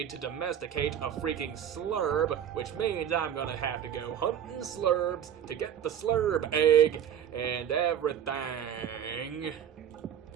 to domesticate a freaking slurb, which means I'm gonna have to go hunting slurbs to get the slurb egg and everything.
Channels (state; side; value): quieter; left; 9.4 dB